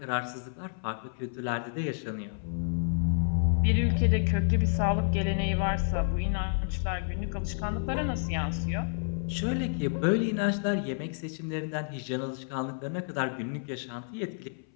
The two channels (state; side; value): silent; right; 58 dB below the other